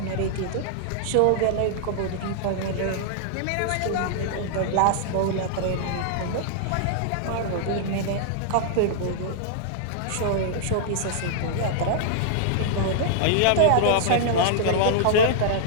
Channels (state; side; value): different; both; correlation -0.01